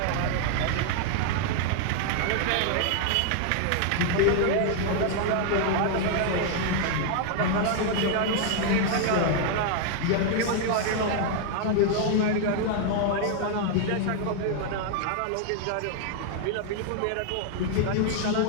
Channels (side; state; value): both; different; correlation 0.00